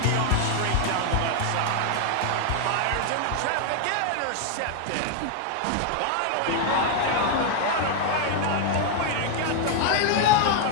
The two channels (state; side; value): different; both; correlation 0.00